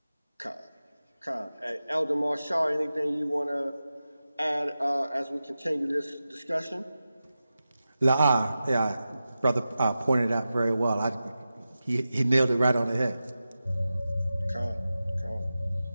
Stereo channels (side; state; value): both; inverted; correlation -0.93